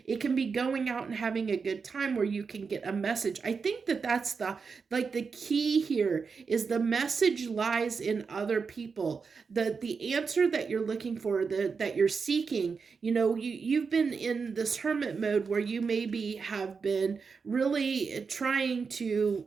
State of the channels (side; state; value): left; quieter; 5.3 dB